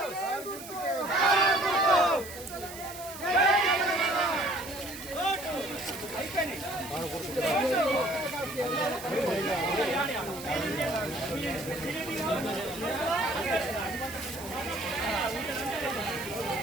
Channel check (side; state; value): right; noise; hiss, 14 dB below the sound